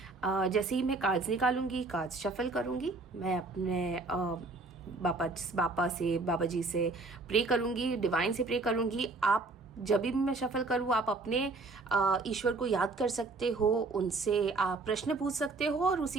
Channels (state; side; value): quieter; left; 3.5 dB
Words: जैसे ही मैं कार्ड्स निकालूंगी, कार्ड्स शफल करूंगी, मैं अपने बाबा जी से प्रे करूंगी, डिवाइन से प्रे करूंगी। आप जब भी मैं शफल करूँ आप अपने ईश्वर को याद कर सकते हो, उनसे आप प्रश्न पूछ सकते हो और